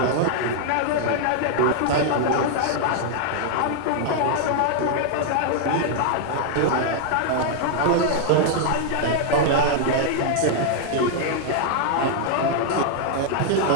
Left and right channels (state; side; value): different; both; correlation 0.00